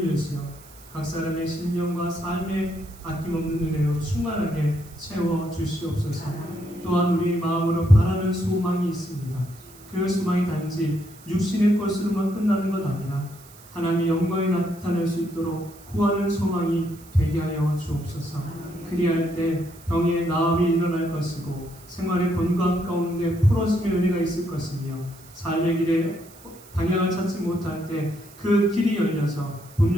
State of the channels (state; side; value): noise; right; hiss, 22 dB below the sound